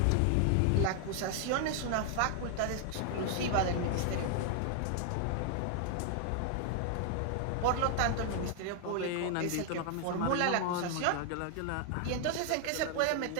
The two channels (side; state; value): both; different; correlation 0.00